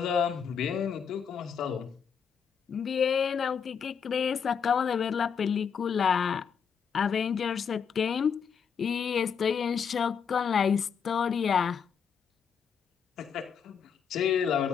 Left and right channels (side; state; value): right; quieter; 6.9 dB